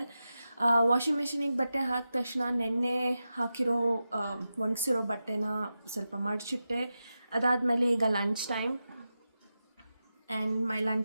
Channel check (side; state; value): both; inverted; correlation -0.91